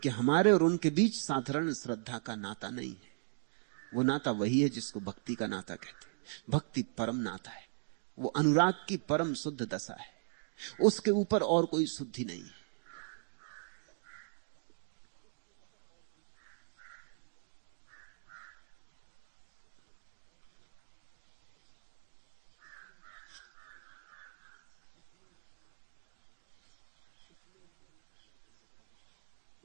कि हमारे और उनके बीच साधारण श्रद्धा का नाता नहीं है। वो नाता वही है जिसको भक्ति का नाता कहते हैं। भक्ति परम नाता है, वो अनुराग की परम शुद्ध दशा है, उसके ऊपर और कोई शुद्धि नहीं है।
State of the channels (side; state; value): left; silent; digital silence